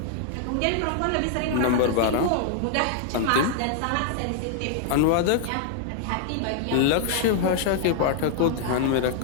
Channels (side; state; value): both; different; correlation 0.00